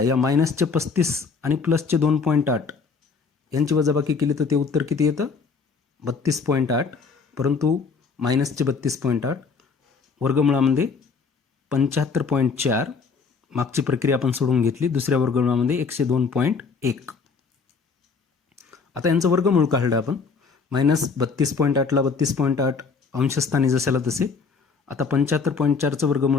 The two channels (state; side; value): quieter; right; 5.0 dB